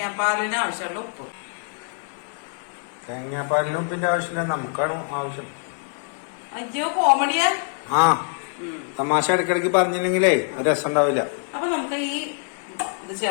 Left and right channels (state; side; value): silent; right; 58 dB below the other